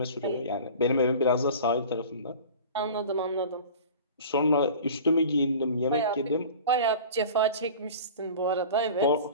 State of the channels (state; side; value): inverted; both; correlation -0.40